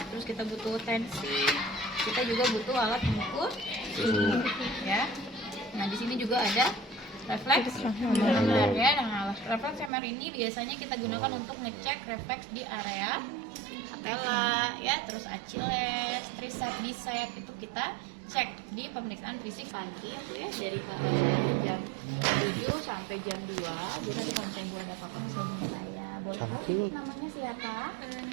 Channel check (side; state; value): left; drops out; at 9.9 s